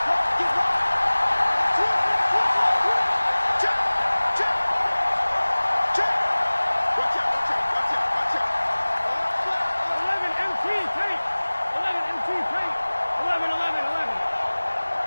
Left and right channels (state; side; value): inverted; both; correlation -1.00